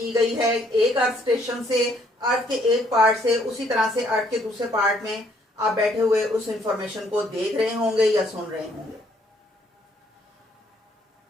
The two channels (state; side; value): normal; both; correlation 0.67